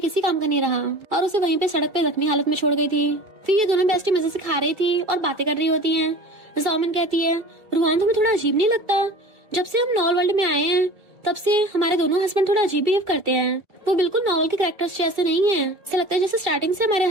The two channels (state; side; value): late; left; 2.3 ms